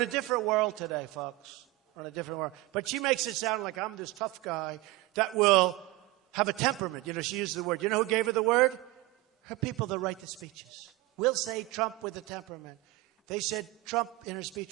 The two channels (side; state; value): left; quieter; 19.7 dB